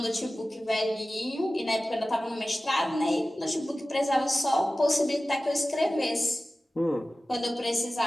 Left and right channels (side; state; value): both; normal; correlation 0.96